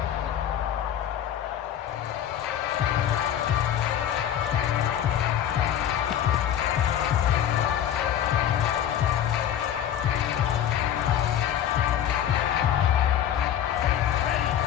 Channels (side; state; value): right; quieter; 10.2 dB